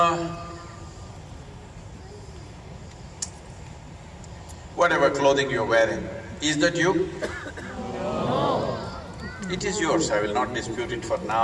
Whatever clothing you're wearing, is that you? No. It is yours, I will not dispute it for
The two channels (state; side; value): identical; both; correlation 1.00